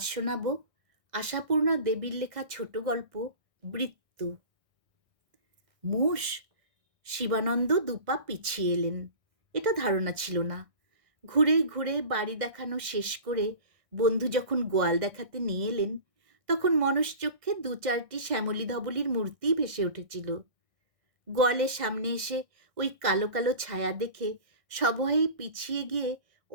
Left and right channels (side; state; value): left; late; 1.6 ms